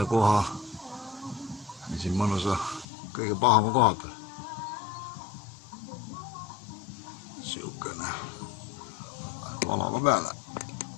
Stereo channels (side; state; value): right; drops out; at 2.9 s